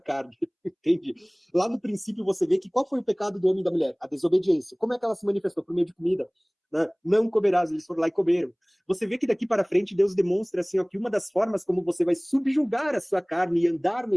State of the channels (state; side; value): identical; both; correlation 1.00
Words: Entende? Lá no princípio você vê que qual foi o pecado do homem e da mulher? A desobediência. Como é que ela se manifestou? Por meio de comida. Né? Não comerás, eles foram lá e comeram. Você vê que daqui para frente Deus demonstra assim, que uma das formas como você vai subjugar a sua carne e andar no